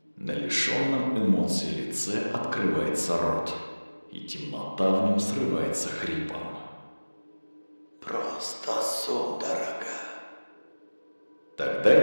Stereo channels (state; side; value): inverted; both; correlation -1.00